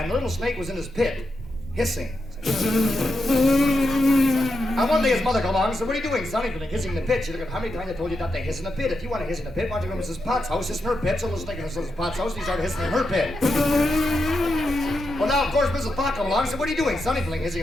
the little snake was in his pit, hissing. And one day his mother came along and said, what are you doing, son? He's been hissing in the pit. She looked at how many times I told you not to hiss in the pit. If you want to hiss in the pit, why don't you go to Mrs. Potts' house, hiss in her pit? So the snake in Mrs. Potts' house, and he started hissing in her pit. Well, now, of course, Mrs. Pot came along and said, what are you doing, son? He's hissing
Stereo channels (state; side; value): normal; both; correlation 0.86